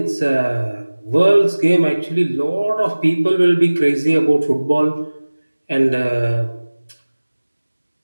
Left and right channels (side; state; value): both; inverted; correlation -1.00